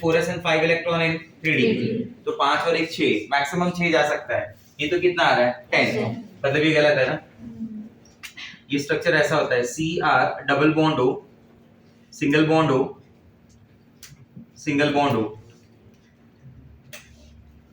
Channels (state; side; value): identical; both; correlation 1.00